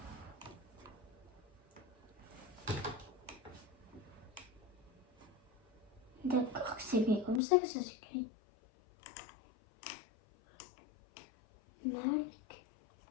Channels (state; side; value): drops out; right; at 7.4 s